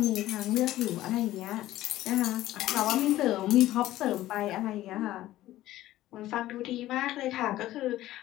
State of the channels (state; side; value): quieter; right; 15.0 dB